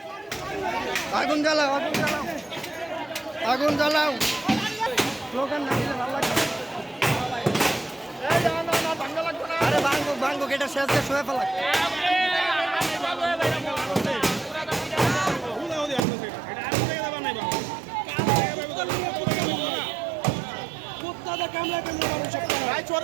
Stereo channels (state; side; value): drops out; left; at 16.1 s